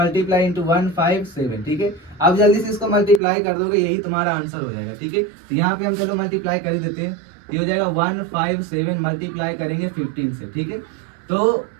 इंटू 157। ठीक है, अब जल्दी से इसको मल्टीप्लाई कर दोगे, यही तुम्हारा आंसर हो जाएगा। ठीक है, तो यहाँ पे हम चलो मल्टीप्लाई कर देते हैं, ये हो जाएगा 157 मल्टीप्लाई करेंगे 15 से। ठीक है, तो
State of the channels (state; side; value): drops out; left; at 3.2 s